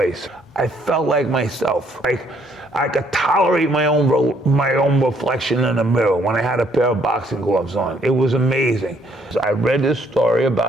I felt like myself. Like I could tolerate my own reflection in the mirror when I had a pair of boxing gloves on. It was amazing. I read this story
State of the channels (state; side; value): normal; both; correlation 0.67